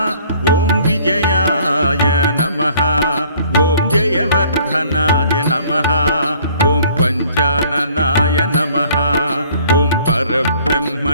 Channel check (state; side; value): inverted; both; correlation -0.57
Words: ఓం విజయాయ నమః. ఓం జయవర్ధనాయ నమః. ఓం పంచాననాయ నమః. ఓం